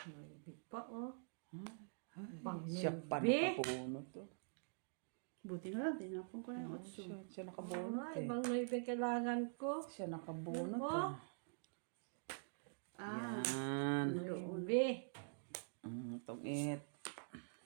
May big pa, oh. Siya pa nakabuno to. Buti na lang, tinapon ko na yung otso. Siya nakabunot Ay, eh. ibang may kailangan ko. Siya nakabunot Oh. ah. Yan. Ubi. Tungit.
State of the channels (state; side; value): silent; left; digital silence